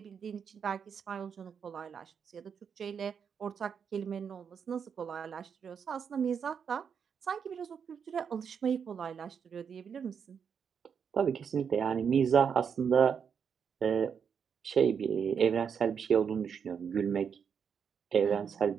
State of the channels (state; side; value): quieter; left; 7.0 dB